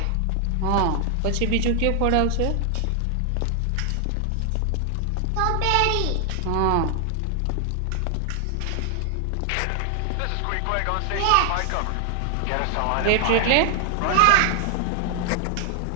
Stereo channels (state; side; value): different; both; correlation 0.00